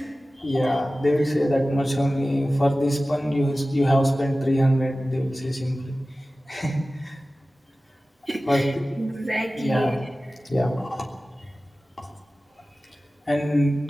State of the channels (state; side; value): normal; both; correlation 0.96